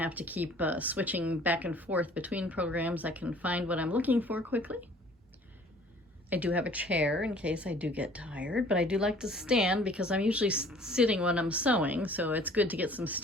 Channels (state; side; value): normal; both; correlation 0.53